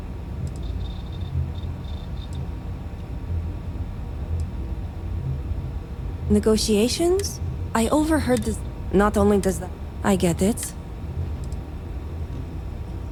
Negotiations? I overheard this. Not only does that... I get it.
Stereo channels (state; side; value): identical; both; correlation 1.00